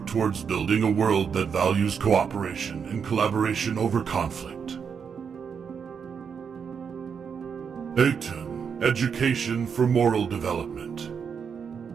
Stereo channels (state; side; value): quieter; left; 6.7 dB